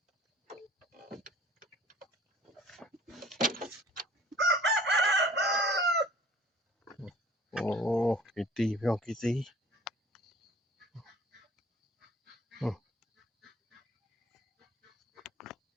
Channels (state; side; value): normal; both; correlation 0.49